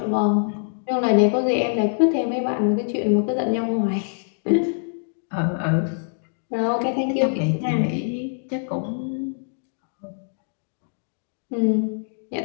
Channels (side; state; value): right; silent; digital silence